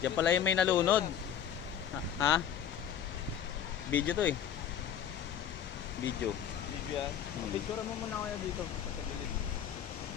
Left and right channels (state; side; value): quieter; right; 9.2 dB